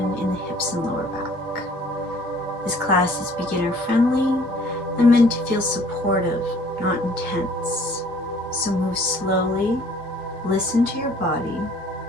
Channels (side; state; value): both; normal; correlation 0.56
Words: in the hips and lower back. This class is beginner friendly and meant to feel supportive, not intense. So move slowly, listen to your body,